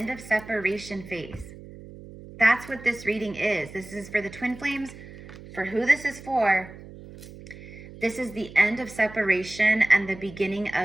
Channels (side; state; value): right; noise; hum, 16 dB below the sound